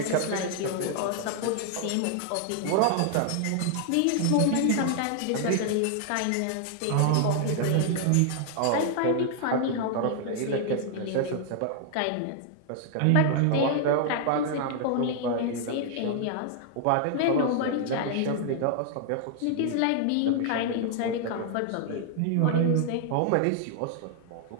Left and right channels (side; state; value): both; different; correlation 0.00